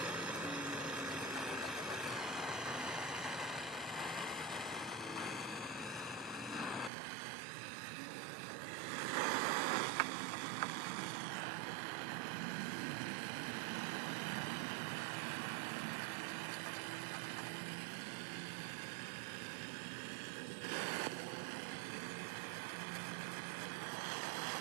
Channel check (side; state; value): left; drops out; at 6.9 s